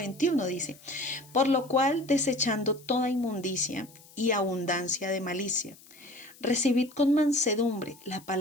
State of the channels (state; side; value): noise; left; hiss, 24 dB below the sound